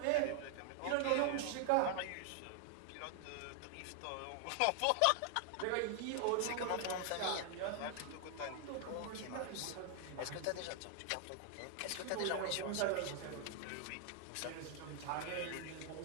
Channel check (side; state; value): both; different; correlation 0.00